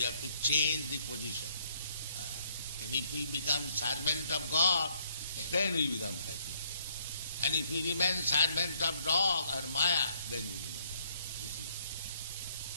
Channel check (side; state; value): both; inverted; correlation -0.68